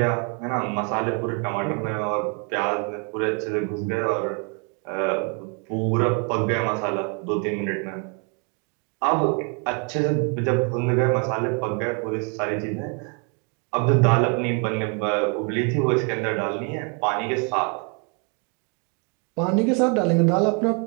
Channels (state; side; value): quieter; left; 35.4 dB